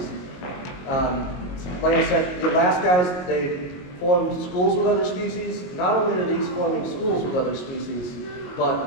Like I said, the last guys, they form schools with other species. Not only are these forming schools with other species,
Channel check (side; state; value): right; late; 22 ms